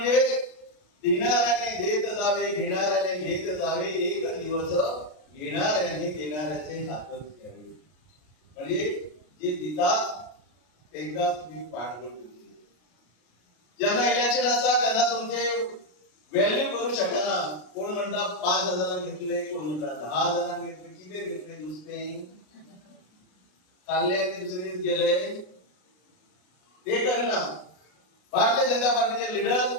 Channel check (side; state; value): right; late; 33 ms